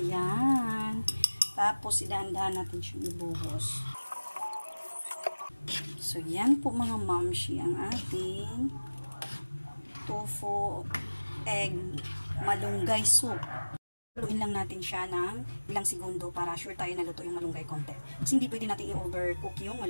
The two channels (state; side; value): inverted; both; correlation -1.00